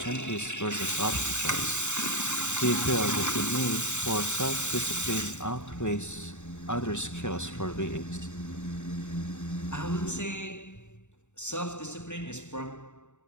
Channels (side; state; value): right; late; 0.84 ms